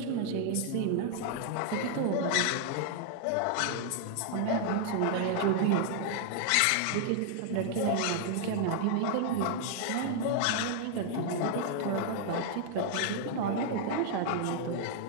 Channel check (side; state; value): both; different; correlation 0.00